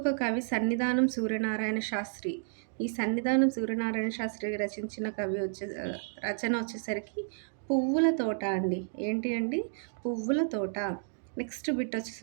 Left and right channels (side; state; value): left; silent; digital silence